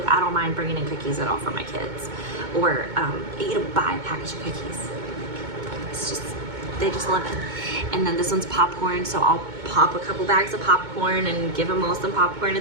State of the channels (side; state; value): left; late; 2.2 ms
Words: I don't mind bringing in cookies at all for my kids, or buy a package of cookies. It's just, they just love it. And then this one's popcorn, so I'll pop a couple bags of popcorn and give them all some popcorn